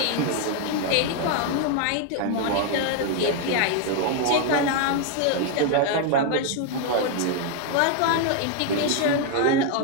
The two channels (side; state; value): both; different; correlation 0.01